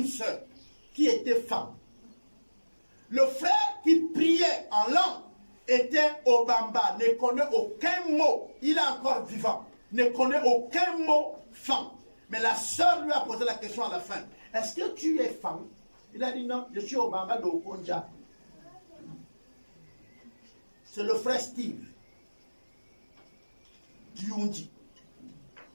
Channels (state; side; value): inverted; both; correlation -1.00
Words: sœur qui était femme. Le frère qui priait en langue était Obamba, ne connaît aucun mot. Il est encore vivant, ne connaît aucun mot femme. Mais la sœur lui a posé la question à la fin. Est-ce que tu es femme? Il a dit non, je suis Obamba de Okonja. C'est le frère Steve Diundi.